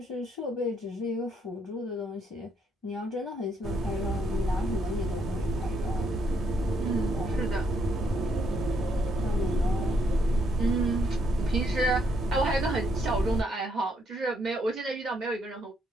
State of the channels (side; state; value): both; normal; correlation 0.73